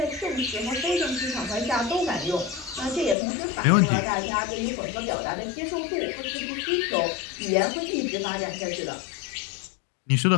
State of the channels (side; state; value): right; drops out; at 3.2 s